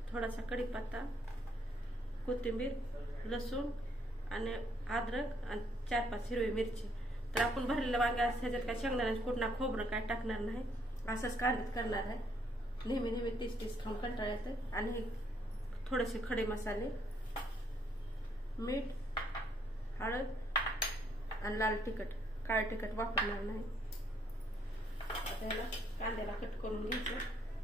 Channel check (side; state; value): both; normal; correlation 0.70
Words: थोडासा कढीपत्ता, कोथिंबीर, लसूण आणि अद्रक आणि 4-5 हिरवी मिरची. तर आपण भरलेलं वांगे ह्याच्यात काय शेंगदाण्याचं कुटणा खोबरं काय टाकणार नाही, असंच कांद्यात करणार आहे. नेहमी 30 खाऊन कंटाळा येतं. आणि थोडेसे खडे मसाले, मीठ, हळद आणि लाल तिखट, काळे तिखट वापरणार नाही. आता याला कांद्याला कट करून घ्यायचं.